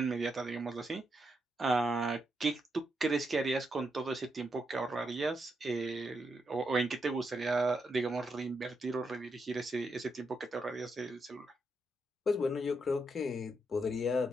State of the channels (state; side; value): normal; both; correlation 0.82